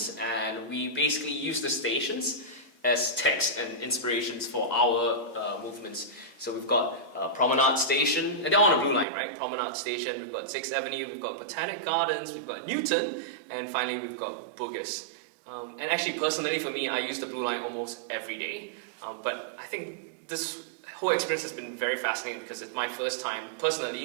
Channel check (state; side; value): drops out; left; at 9.1 s